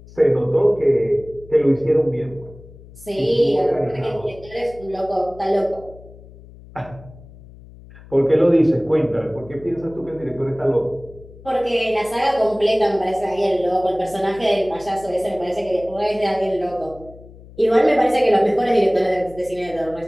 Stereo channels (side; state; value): left; noise; hum, 20 dB below the sound